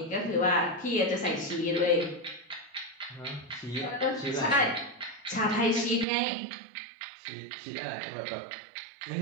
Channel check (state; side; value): drops out; left; at 6.1 s